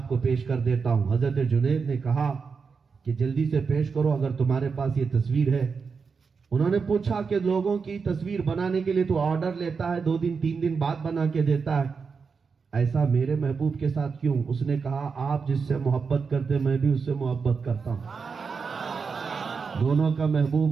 کو پیش کر دیتا ہوں۔ حضرت جنید نے کہا کہ جلدی سے پیش کرو اگر تمہارے پاس یہ تصویر ہے۔ انہوں نے پوچھا کہ لوگوں کی تصویر بنانے کے لیے تو آرڈر لیتا ہے، 2 دن 3 دن بعد بنا کے دیتا ہے، ایسا میرے محبوب کے ساتھ کیوں؟ اس نے کہا آپ جس سے محبت کرتے میں بھی اس سے محبت کرتا ہوں، دونوں کا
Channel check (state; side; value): quieter; left; 5.3 dB